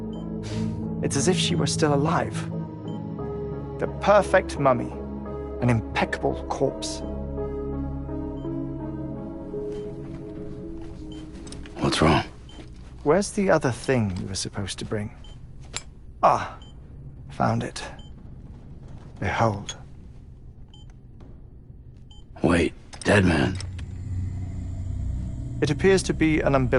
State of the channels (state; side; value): identical; both; correlation 1.00